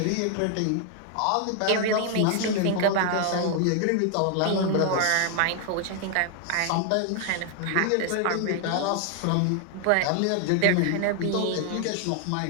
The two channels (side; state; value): both; different; correlation 0.00